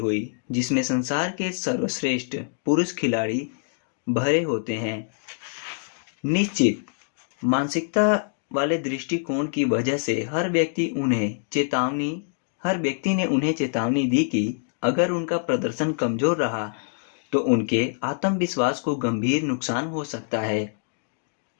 जिसमें संसार के सर्वश्रेष्ठ पुरुष खिलाड़ी भरे होते हैं। निश्चित मानसिकता वाले दृष्टिकोण की वजह से हर व्यक्ति ने उन्हें चेतावनी दी कि अगर उनका प्रदर्शन कमजोर रहा तो उनके आत्मविश्वास को गंभीर नुकसान हो सकता है,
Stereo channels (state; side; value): silent; right; digital silence